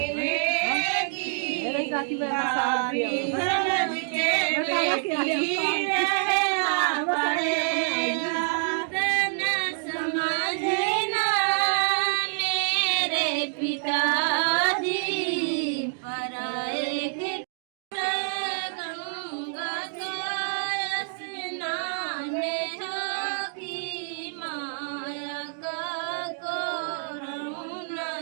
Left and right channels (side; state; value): left; silent; digital silence